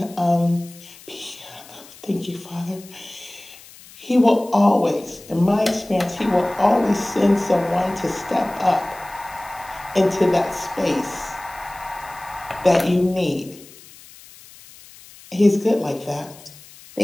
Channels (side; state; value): left; noise; hiss, 21 dB below the sound